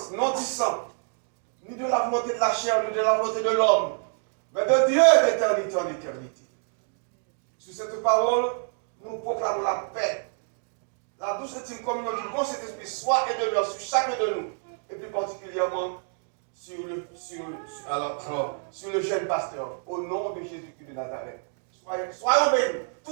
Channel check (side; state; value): left; silent; 60 dB below the other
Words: non du sang, ni de la volonté de la chair, ni de la volonté de l'homme, mais de Dieu d'éternité en éternité. Sur cette parole, nous proclamons la paix, la douce intime communion du bon Saint-Esprit soit et demeure sur chacun de nous, et plus particulièrement sur le jeune pasteur, au nom de Jésus-Christ de Nazareth. Soyons bénis,